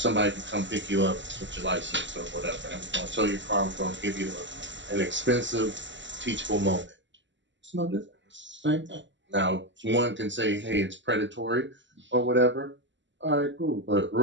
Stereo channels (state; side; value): late; left; 0.54 ms